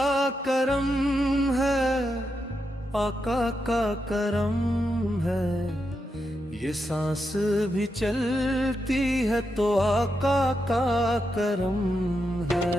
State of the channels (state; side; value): normal; both; correlation 0.85